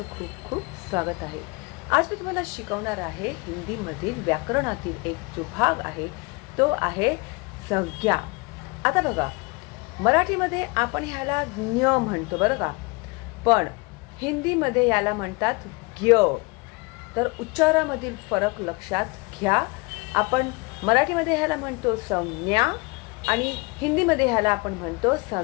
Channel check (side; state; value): right; quieter; 27.2 dB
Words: खूप खूप स्वागत आहे. आज मी तुम्हाला शिकवणार आहे हिंदी मधील व्याकरणातील एक जो भाग आहे तो आहे संज्ञा. आता बघा, मराठीमध्ये आपण ह्याला ज्ञ म्हणतो बरं का, पण हिंदीमध्ये याला म्हणतात ज्ञ. तर उच्चारामधील फरक लक्षात घ्या. आपण मराठीमध्ये ह्याला म्हणतो संज्ञा आणि हिंदीमध्ये ह्याला आपण म्हणतो